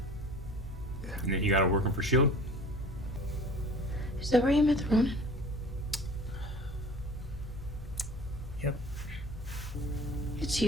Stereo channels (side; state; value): both; normal; correlation 0.44